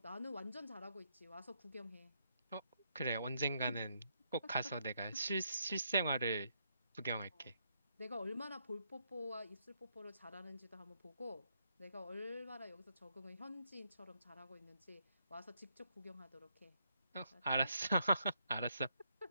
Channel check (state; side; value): inverted; both; correlation -0.76